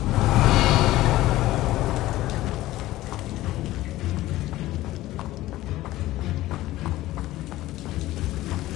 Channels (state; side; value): quieter; right; 16.3 dB